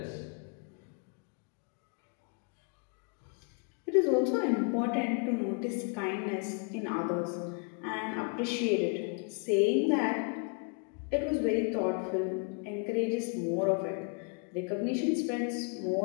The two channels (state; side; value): quieter; right; 36.6 dB